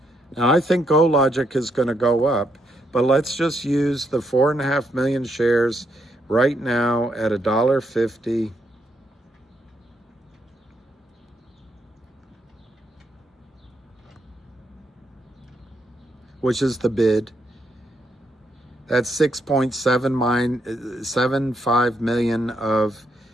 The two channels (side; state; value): both; normal; correlation 0.77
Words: Now, I think GoLogic is going to go up, but let's just use the 4.5 million shares right now at $1.50. Which is the bid. That's 6.75 million of